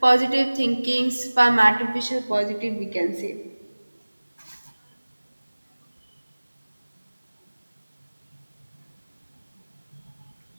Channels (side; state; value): both; inverted; correlation -1.00